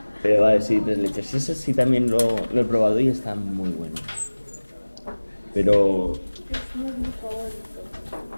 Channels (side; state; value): both; inverted; correlation -1.00